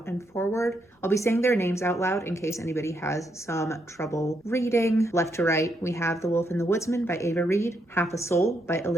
and forward. I'll be saying their names out loud in case anybody has some trouble reading. Left to right, we have The Wolf and the Woodsman by Ava Reid, Half a Soul by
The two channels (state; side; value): normal; both; correlation 0.78